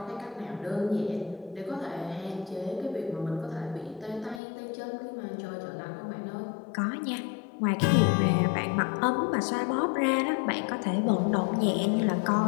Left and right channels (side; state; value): right; drops out; at 4.4 s